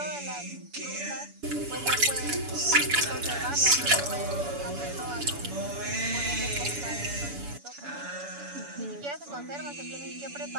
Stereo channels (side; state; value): left; late; 7.0 ms